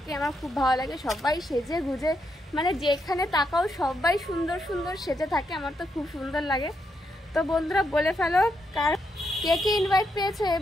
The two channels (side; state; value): both; normal; correlation 0.80